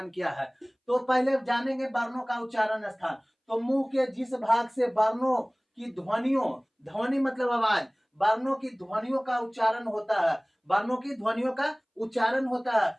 क्या है। तो पहले जानेंगे वर्णों का उच्चारण स्थान। तो मुंह के जिस भाग से वर्णों की ध्वनियों, ध्वनि मतलब आवाज, वर्णों की ध्वनियों का उच्चारण होता है, वर्णों की ध्वनियों का उच्चारण होता है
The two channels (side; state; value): both; identical; correlation 1.00